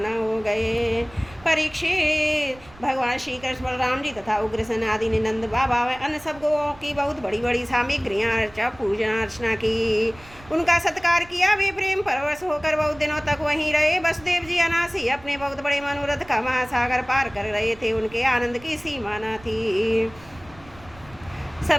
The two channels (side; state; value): right; noise; rumble, 22 dB below the sound